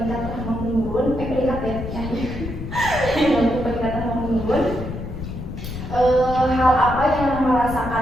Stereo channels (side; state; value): left; noise; rumble, 8 dB below the sound